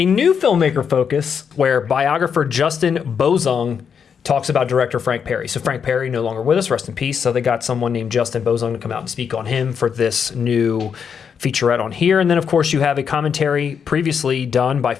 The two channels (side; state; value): right; quieter; 7.0 dB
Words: new filmmaker focus where biographer Justin Bozung talks about director Frank Perry. So Frank Perry no longer with us, rest in peace. So they got someone named Justin Bozung to come out and speak on him for this new featurette on here. And then of course you have a commentary previously done by